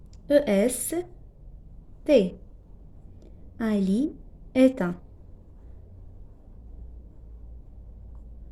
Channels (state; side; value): identical; both; correlation 1.00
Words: E-S-T. Ali est un.